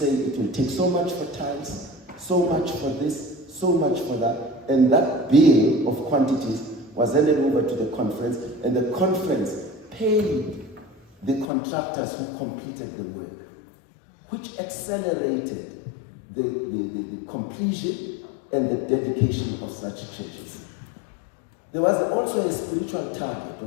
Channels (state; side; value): drops out; right; at 11.5 s